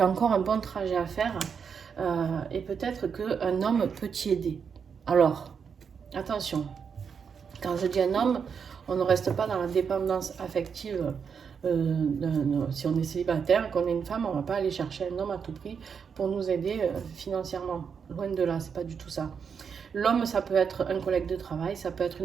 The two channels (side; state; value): left; quieter; 6.5 dB